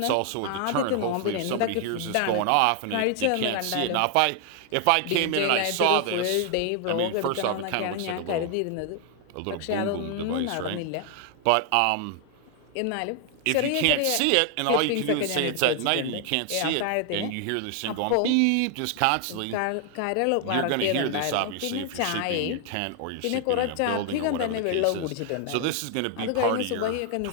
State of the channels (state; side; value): different; both; correlation 0.00